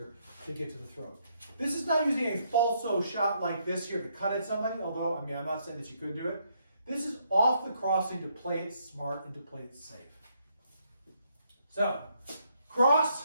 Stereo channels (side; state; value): both; inverted; correlation -0.73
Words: to get to the throat. This is not using a falso shot like this here to cut at somebody, although, I mean, I'm not saying that you could do it. This is off the crossing to play it smart and to play it safe. So,